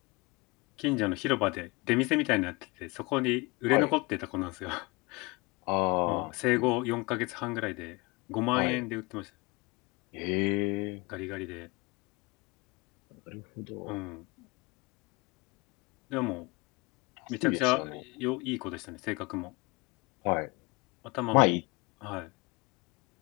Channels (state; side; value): quieter; right; 25.2 dB